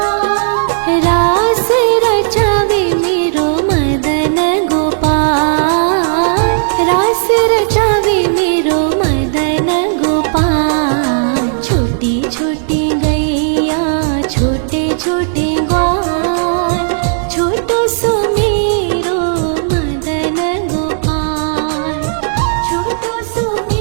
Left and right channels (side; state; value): left; silent; digital silence